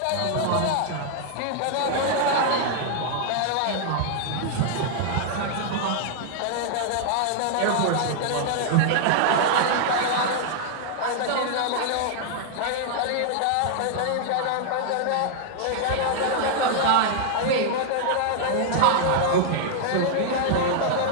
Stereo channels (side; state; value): both; different; correlation 0.00